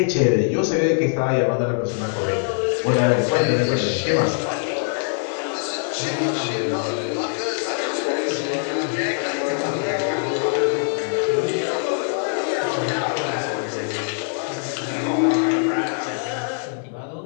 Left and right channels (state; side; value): silent; right; 59 dB below the other